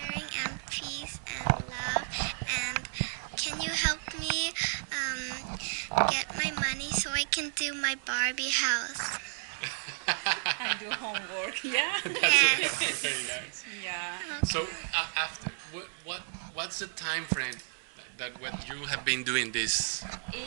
and peace and love? And can you help me get my money so I can do my Barbie house? And do homework, yeah? Yes. Very nice. Yeah. So after what's the time frame that what you have been doing this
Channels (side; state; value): left; silent; digital silence